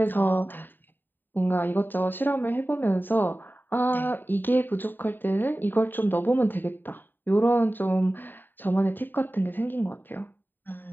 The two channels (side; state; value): right; late; 0.092 ms